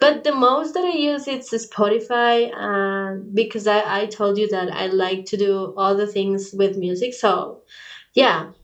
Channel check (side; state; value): both; identical; correlation 1.00